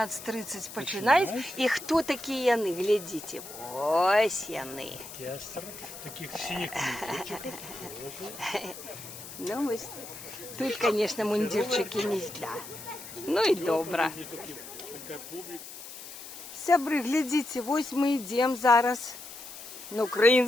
починают. И кто такие яны? Глядите. Ось яны. Оркестр таких синих мундирчиков тоже. Ну, ось. Тут, конечно, мундирчики не зля. Ну и добра. Такая публика. Сябры, глядите, вось мы идем зараз на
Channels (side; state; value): left; noise; hiss, 13 dB below the sound